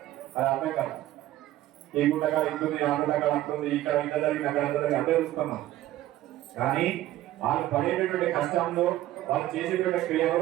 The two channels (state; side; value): quieter; left; 14.7 dB